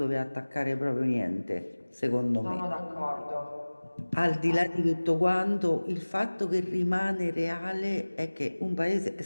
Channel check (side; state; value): both; inverted; correlation -1.00